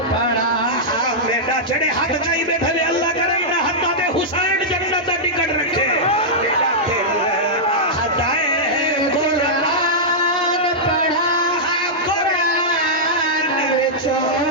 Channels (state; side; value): normal; both; correlation -0.09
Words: پڑھا بیٹا جڑے ہاتھ جائی بیٹھا لے اللہ کرے نہ ہاتھا دے حسین جنت دا ٹکٹ رکھے بیٹا دل آہدائے قرآن پڑھا قرآن وچو